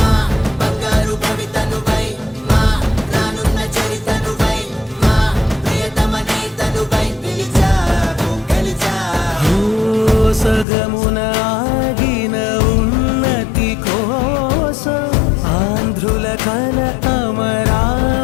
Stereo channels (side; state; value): right; drops out; at 10.7 s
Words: బంగారు భవితనువై, మా రానున్న చరితనువై, మా ప్రియతమ నేతనువై పిలిచావు గెలిచావు. సగమున ఆగిన ఉన్నతి కోసం, ఆంధ్రుల కల